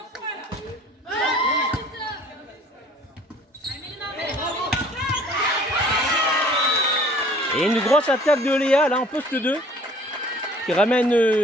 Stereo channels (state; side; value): normal; both; correlation 0.52